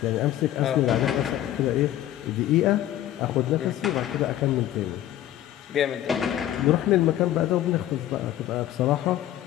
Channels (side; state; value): right; quieter; 12.8 dB